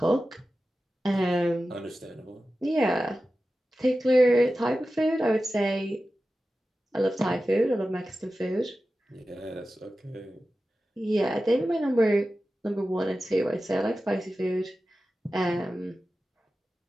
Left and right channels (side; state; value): both; normal; correlation 0.94